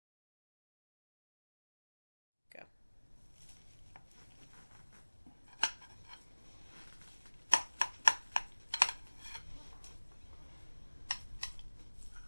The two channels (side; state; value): both; inverted; correlation -1.00